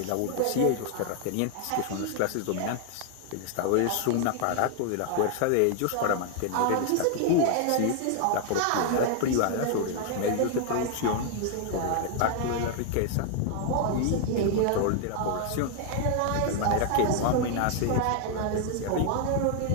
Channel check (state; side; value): different; both; correlation 0.00